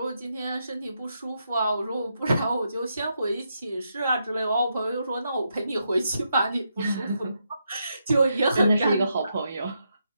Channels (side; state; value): both; inverted; correlation -0.81